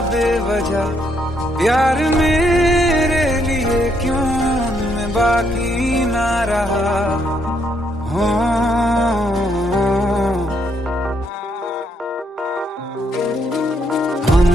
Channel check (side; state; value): both; normal; correlation 0.73